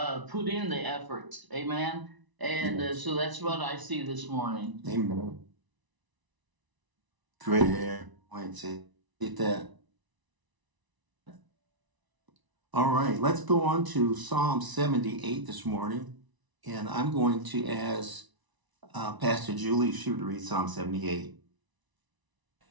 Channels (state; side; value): late; left; 1.0 ms